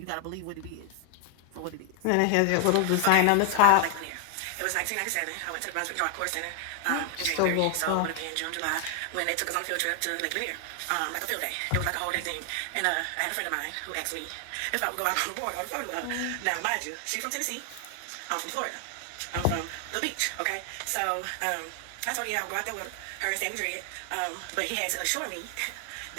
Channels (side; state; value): both; different; correlation 0.00